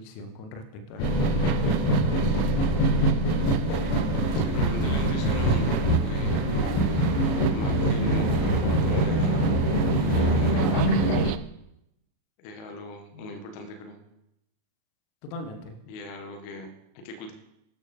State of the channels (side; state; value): right; late; 37 ms